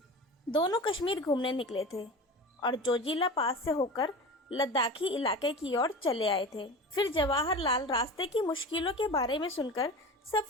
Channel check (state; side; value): normal; both; correlation 0.32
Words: दोनों कश्मीर घूमने निकले थे और जोजिला पास से होकर लद्दाखी इलाके की ओर चले आए थे। फिर जवाहरलाल रास्ते की मुश्किलों के बारे में सुनकर